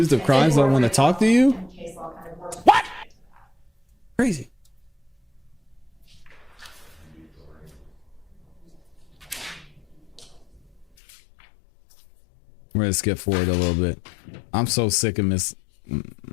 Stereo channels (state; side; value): drops out; right; at 10.9 s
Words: of crimes don't want to talk to you? What? Crazy. We're gonna skip forward a little bit. I'm so sick of Miss.